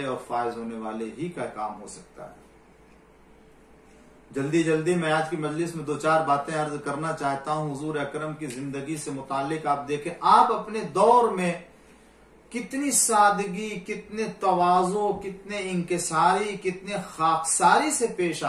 اور فائز ہونے والے ہی کا کام ہو سکتا ہے۔ جلدی میں آج کی مجلس میں 2-4 باتیں عرض کرنا چاہتا ہوں حضور اکرم کی زندگی سے متعلق۔ آپ دیکھیں آپ اپنے دور میں کتنی سادگی، کتنے تواضع، کتنے انکساری، کتنے خاکساری سے پیش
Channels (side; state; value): both; identical; correlation 1.00